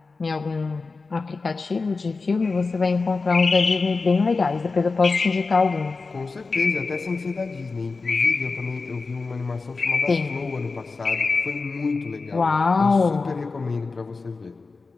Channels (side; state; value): right; quieter; 4.1 dB